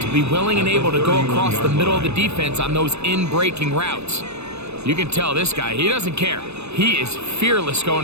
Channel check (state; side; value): late; left; 0.80 ms